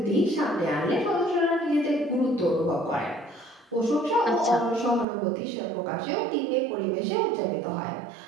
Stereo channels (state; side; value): drops out; left; at 5.1 s